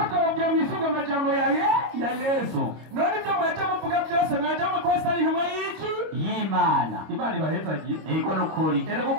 mwisunga amajambo ya Yesu none ibyo mwaje muvuga byose mwaje mukosa ari intumwa y'iki y'Imana Imana ibahezagiye ego nukuri erega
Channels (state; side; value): late; left; 25 ms